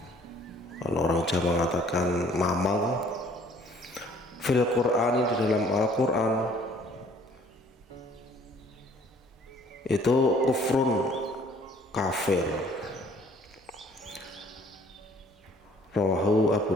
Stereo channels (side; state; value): both; normal; correlation 0.58